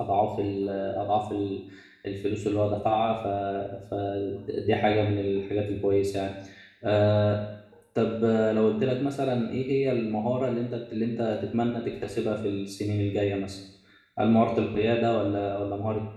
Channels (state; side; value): identical; both; correlation 1.00